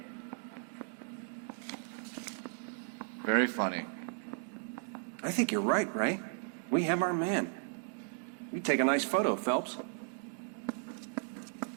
Very funny. I think you're right, Ray. We have our man. You take a nice photo, Phelps.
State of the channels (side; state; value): left; silent; 54 dB below the other